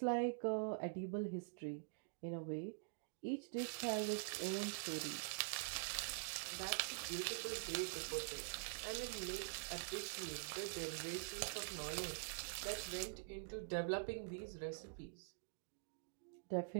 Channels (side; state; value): left; silent; digital silence